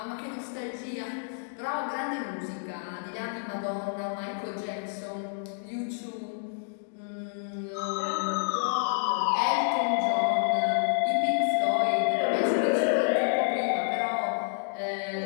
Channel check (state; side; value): silent; right; digital silence